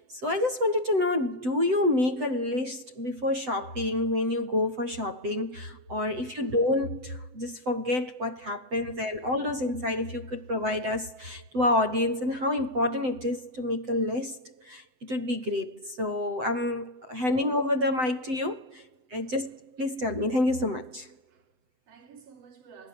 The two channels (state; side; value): late; left; 7.9 ms